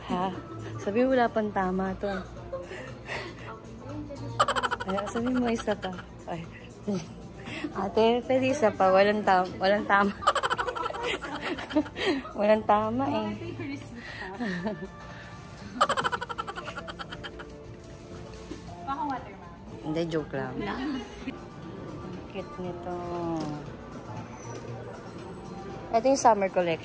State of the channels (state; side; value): identical; both; correlation 1.00